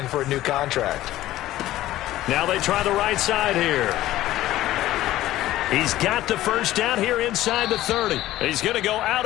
for a new contract. Now they try the right side here. He's got the first down here inside the 30. He's going to go out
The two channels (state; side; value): quieter; right; 15.0 dB